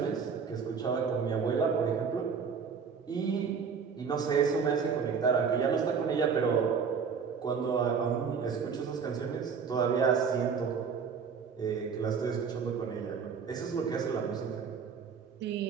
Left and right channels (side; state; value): left; quieter; 6.1 dB